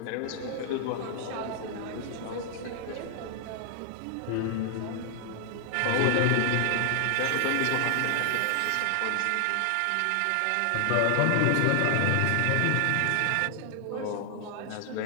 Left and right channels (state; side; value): different; both; correlation 0.00